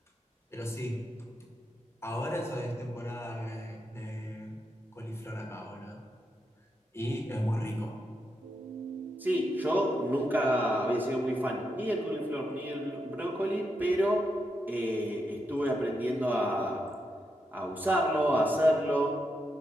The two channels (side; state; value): both; normal; correlation 0.84